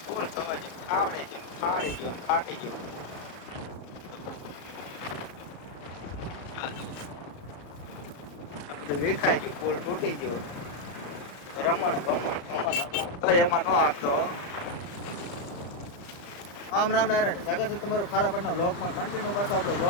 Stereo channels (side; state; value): right; late; 34 ms